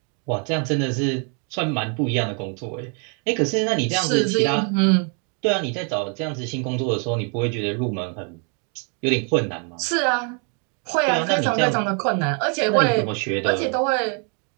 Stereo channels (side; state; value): left; quieter; 38.6 dB